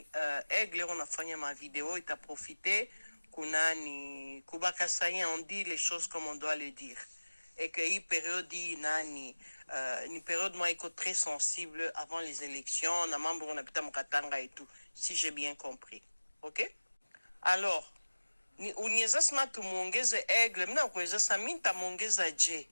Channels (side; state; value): both; inverted; correlation -1.00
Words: Aigle unafanya ma vidéo ita profiter kunani kubaka sayen on dit les choses comme on doit le dire. Et que hii période nani ni période moi iko très sensible avant les élections na mambo unapita mkatanga et tout, si j'ai bien compris. OK? Alors ni uniweza sema tumuongeze Aigle, mina kuweza sema minta muongeza je